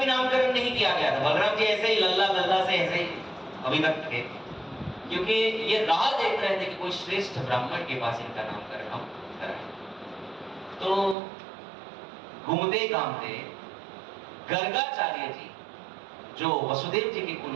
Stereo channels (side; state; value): left; drops out; at 11.2 s